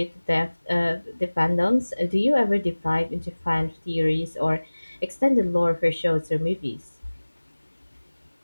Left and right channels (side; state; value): both; inverted; correlation -1.00